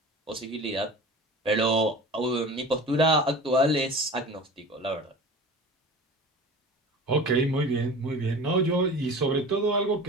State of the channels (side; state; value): both; normal; correlation 0.37